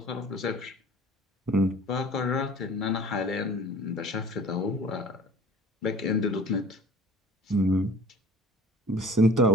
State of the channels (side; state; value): both; normal; correlation 0.45